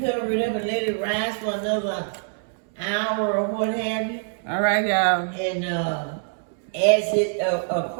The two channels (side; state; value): left; silent; 62 dB below the other